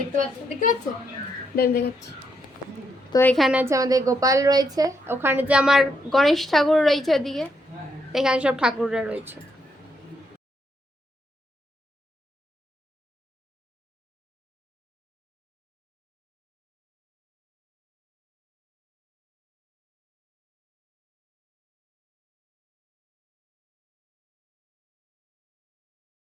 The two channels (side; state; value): both; normal; correlation 0.78